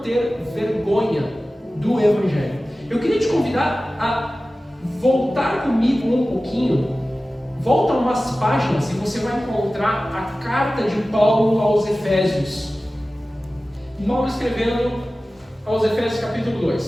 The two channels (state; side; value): normal; both; correlation 0.96